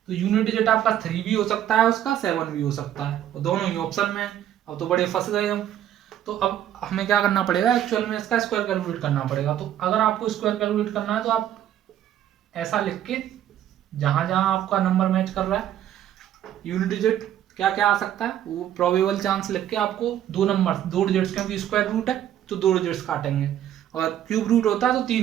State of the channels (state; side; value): quieter; left; 11.2 dB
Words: तो यूनिट डिजिट आपका 3 भी हो सकता है, उसका 7 भी हो सकता है, और दोनों ही ऑप्शन में है। अब तो बड़े फंस गए हम। तो अब हमें क्या करना पड़ेगा, एक्चुअल में इसका स्क्वायर कैलकुलेट करना पड़ेगा। तो अगर आपको स्क्वायर कैलकुलेट करना है तो आप ऐसा लिख के, जहां जहां आपका नंबर मैच कर रहा है यूनिट डिजिट क्या क्या आ सकता है वो प्रोबेबल चांस लिख के आपको दो नंबर 2 डिजिट्स, क्योंकि स्क्वायर रूट है तो 2 डिजिट्स काटेंगे, और क्यूब रूट होता है तो